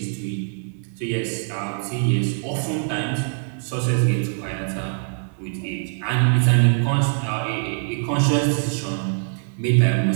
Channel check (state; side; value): silent; left; digital silence